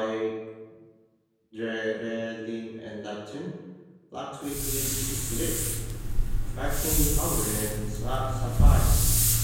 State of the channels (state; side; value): identical; both; correlation 1.00